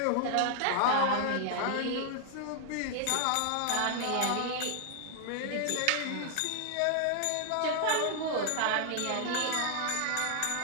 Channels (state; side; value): different; both; correlation 0.00